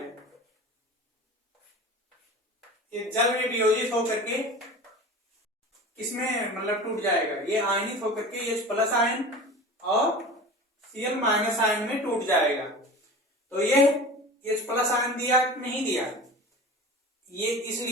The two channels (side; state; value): both; normal; correlation 0.35